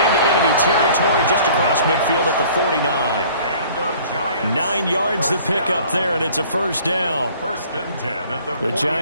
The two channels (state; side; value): inverted; both; correlation -0.52